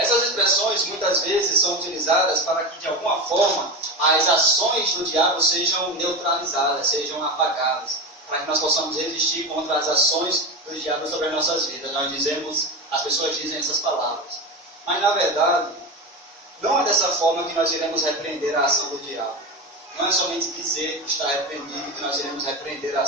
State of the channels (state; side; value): normal; both; correlation 0.21